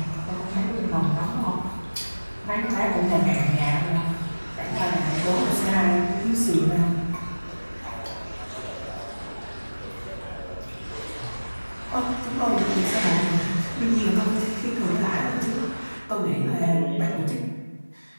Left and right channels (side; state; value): both; inverted; correlation -1.00